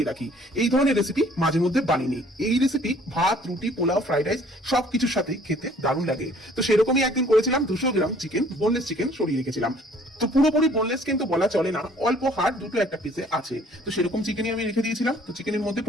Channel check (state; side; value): normal; both; correlation 0.57